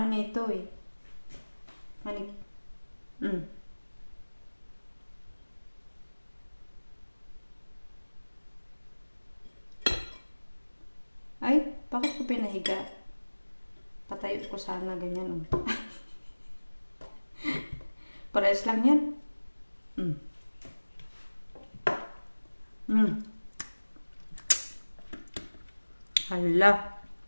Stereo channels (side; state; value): both; inverted; correlation -1.00